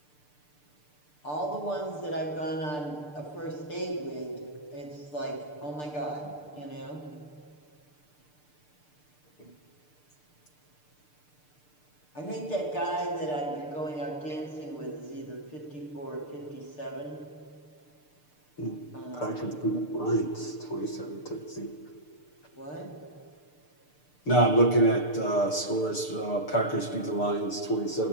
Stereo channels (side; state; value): right; late; 6.7 ms